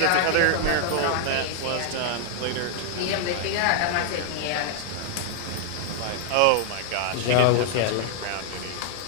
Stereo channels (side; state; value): both; different; correlation 0.00